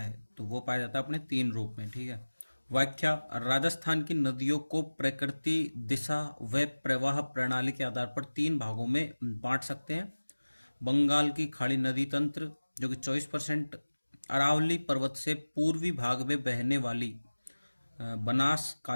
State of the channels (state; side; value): inverted; both; correlation -1.00